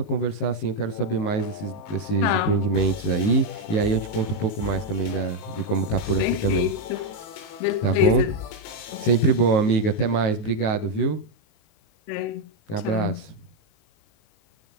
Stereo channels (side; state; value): right; late; 19 ms